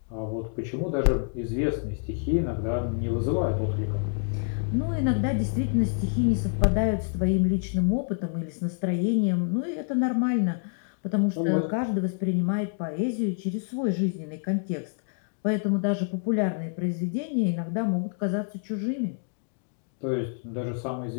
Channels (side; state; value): right; silent; 60 dB below the other